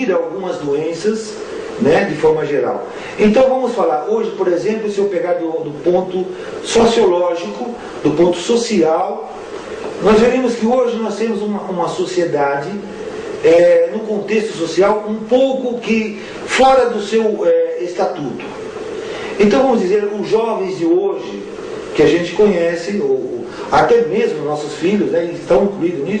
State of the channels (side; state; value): both; identical; correlation 1.00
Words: algumas doenças, né, de forma geral. Então vamos falar hoje, por exemplo, se eu pegar do ponto sociológico, do ponto social, nós veremos que hoje nós temos uma sociedade no contexto social um pouco que fora do seu estatuto. Então vamos dizer, os jovens de hoje que a gente conhece, ou até mesmo nossos filhos, né, estão incluídos